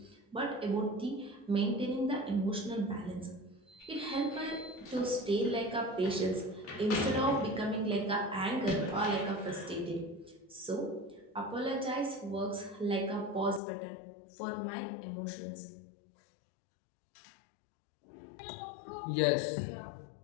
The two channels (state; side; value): drops out; right; at 13.6 s